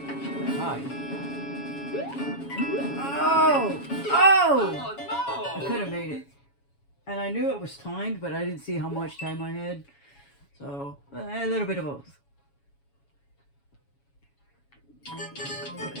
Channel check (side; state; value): right; late; 7.2 ms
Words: hi. Oh! Oh! Oh no! I could have made it. And I knew it was timed, but I didn't see how much time I had. So, a little bit of both.